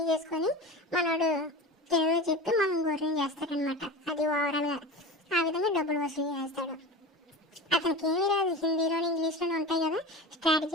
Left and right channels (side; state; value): both; normal; correlation 0.31